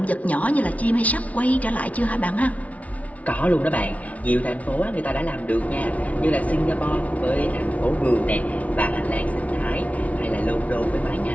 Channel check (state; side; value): late; right; 0.068 ms